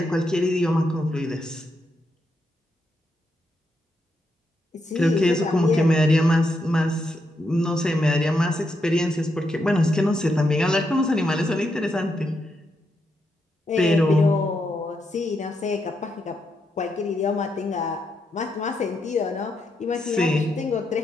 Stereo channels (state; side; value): normal; both; correlation 0.81